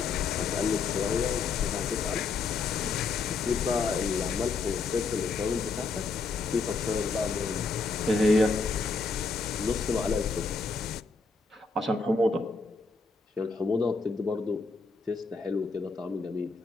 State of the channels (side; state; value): right; quieter; 4.3 dB